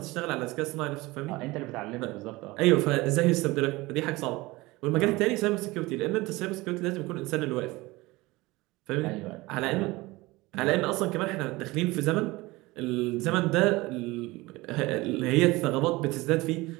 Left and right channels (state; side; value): quieter; left; 21.3 dB